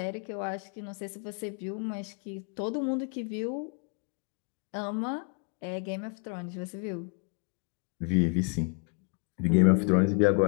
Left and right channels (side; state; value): right; quieter; 36.7 dB